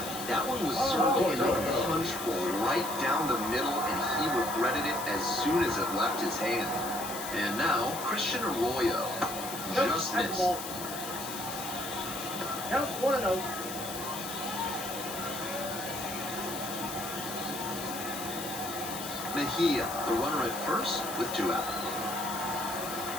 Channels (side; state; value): left; noise; hiss, 8 dB below the sound